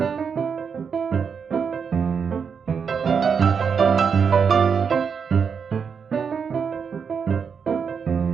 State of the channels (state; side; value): quieter; left; 6.4 dB